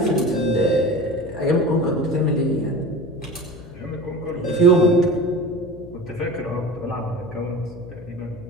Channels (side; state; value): left; noise; hum, 17 dB below the sound